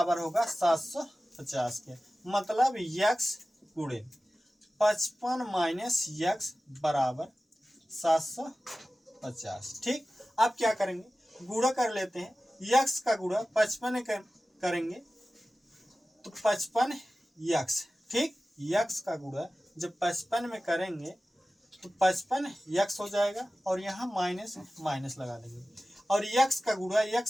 होगा, 750 के। मतलब यक्स गुणे 55 माइनस यक्स बराबर 750। ठीक, अब क्या करेंगे, गुणा कर लेते हैं, यक्स का गुणा 55 करेंगे तो 55 यक्स। ठीक, यक्स का गुणा जब 55 में करेंगे तो 55 यक्स हो जाएगा और यहाँ माइनस माइनस लगा देंगे, और यक्स का गुणा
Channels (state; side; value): normal; both; correlation 0.96